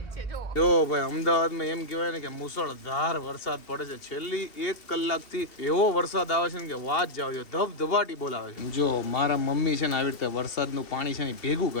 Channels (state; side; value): late; right; 2.7 ms